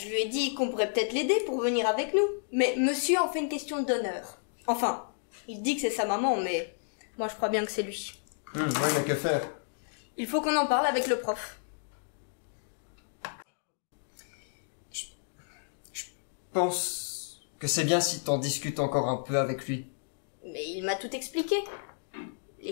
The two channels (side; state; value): right; silent; digital silence